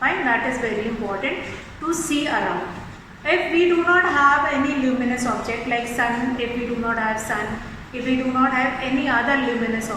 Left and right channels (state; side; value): identical; both; correlation 1.00